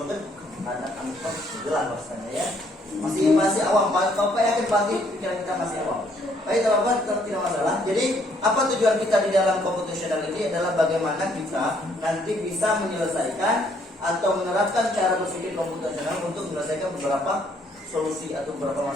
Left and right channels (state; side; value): normal; both; correlation 0.67